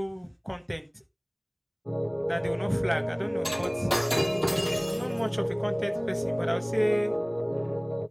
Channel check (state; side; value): identical; both; correlation 1.00